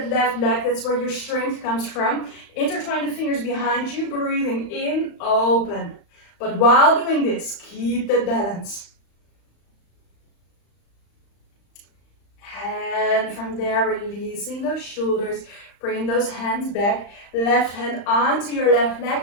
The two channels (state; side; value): late; right; 35 ms